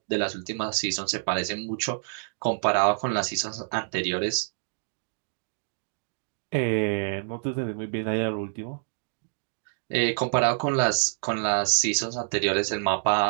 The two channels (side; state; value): left; silent; digital silence